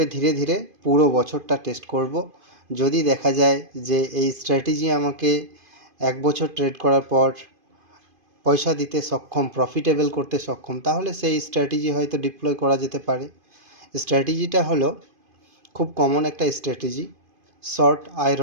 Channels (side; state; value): left; late; 2.5 ms